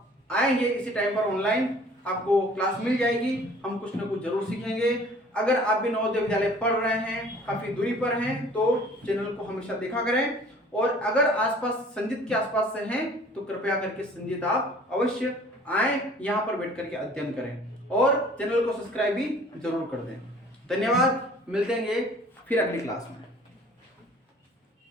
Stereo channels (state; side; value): normal; both; correlation 0.51